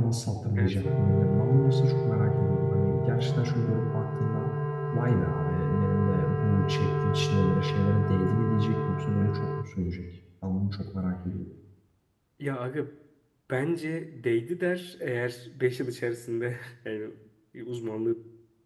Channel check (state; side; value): identical; both; correlation 1.00